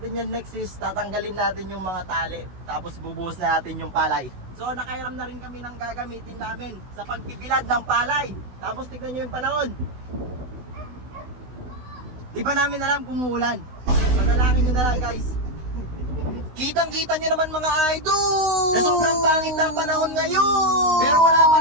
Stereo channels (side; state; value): left; late; 16 ms